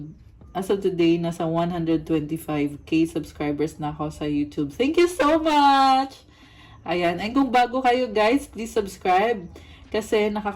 today, nasa 125k subscribers na ako sa YouTube. Thank you so much! Ayan, and kung bago kayo, guys, please subscribe. Kasi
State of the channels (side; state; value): both; identical; correlation 1.00